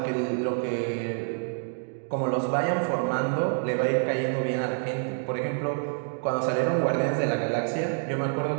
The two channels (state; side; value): silent; left; 60 dB below the other